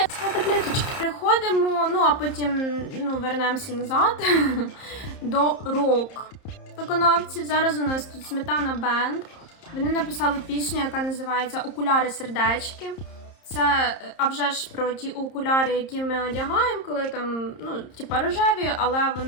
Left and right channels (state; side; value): late; right; 30 ms